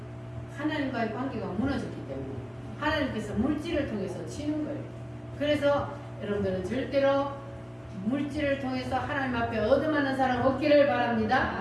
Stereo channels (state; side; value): identical; both; correlation 1.00